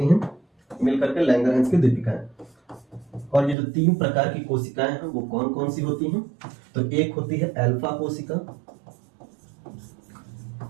हैं मिलकर के लैंगरहैंस की द्वीपिकाएं। और ये जो 3 प्रकार की कोशिकाएं हैं वो कौन कौन सी होती हैं? तो एक होती है अल्फा कोशिका,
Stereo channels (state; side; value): drops out; left; at 3.6 s